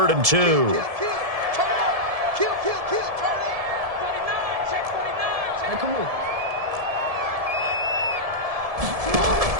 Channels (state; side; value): late; left; 1.7 ms